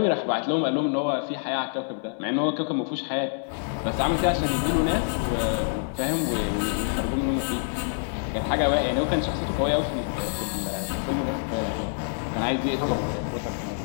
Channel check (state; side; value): silent; right; digital silence